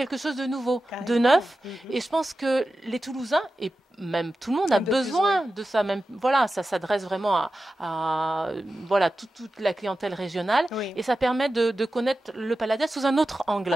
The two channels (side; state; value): both; normal; correlation 0.93